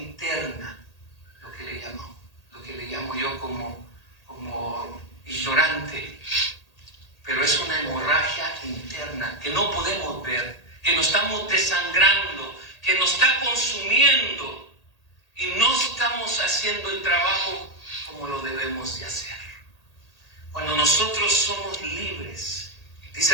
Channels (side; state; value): right; late; 1.8 ms